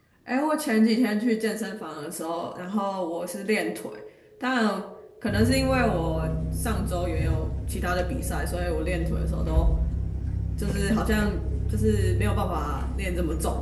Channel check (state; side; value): identical; both; correlation 1.00